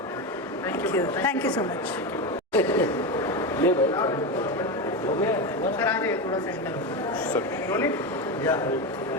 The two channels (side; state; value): both; normal; correlation 0.16